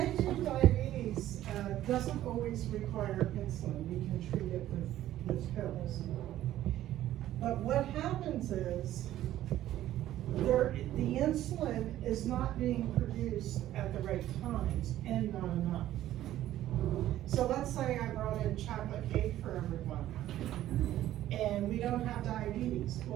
2 diabetes doesn't always require insulin. We can treat it with pills. But what happens is the insulin is not being produced at the right times and not enough. So let's say I brought in chocolate cake for everyone and we don't have diabetes.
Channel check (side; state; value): left; quieter; 13.3 dB